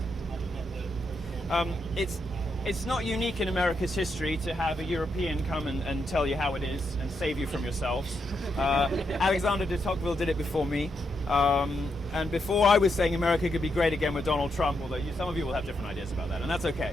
It's not unique in America's history to have a European come and tell you how it is and save you from yourselves. Alexander de Tocqueville did it before me. And before I was saying America could be great again with Donald Trump, although some of you will have different ideas about that, and that's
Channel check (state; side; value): normal; both; correlation 0.81